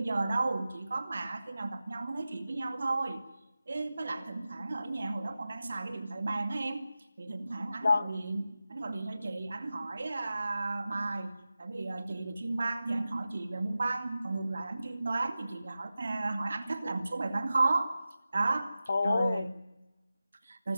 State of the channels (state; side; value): inverted; both; correlation -0.94